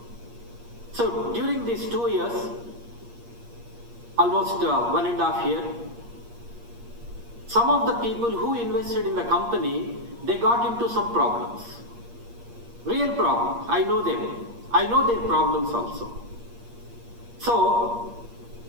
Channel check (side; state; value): left; late; 8.5 ms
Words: So during these 2 years, almost 1.5 years, some of the people who invested in the company, they got into some problems. Real problems. I know them. I know their problems also. So